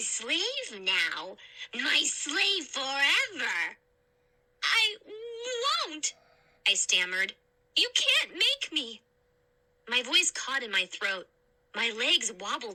slave now. My slave forever. I won't, I stammered. You can't make me. My voice caught in my throat. My legs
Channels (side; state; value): both; identical; correlation 1.00